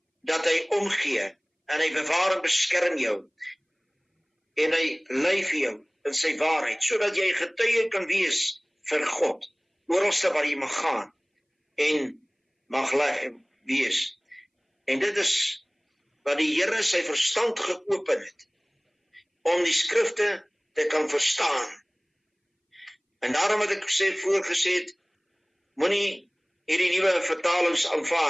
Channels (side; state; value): both; identical; correlation 1.00